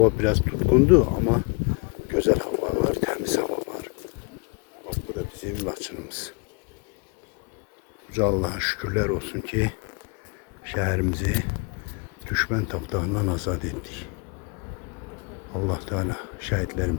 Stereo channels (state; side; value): quieter; right; 31.3 dB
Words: biraz tutkundu ama güzel hava var, temiz hava var. Bak bu da bizim Laçınımız. Uca Allah'a şükürler olsun ki şehrimizi düşman tapdağından azad ettik. Allah Teala